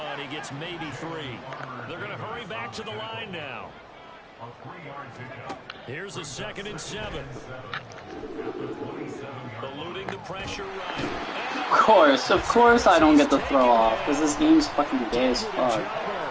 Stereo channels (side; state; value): both; identical; correlation 1.00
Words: He gets maybe 3. They're going to hurry back to the line now. Here's a 2nd and 7. Eluding the pressure right. Of course I don't get the throw off, because this game's fucking gay as fuck.